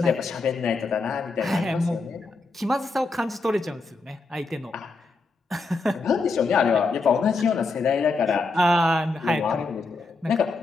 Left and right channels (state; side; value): quieter; right; 3.7 dB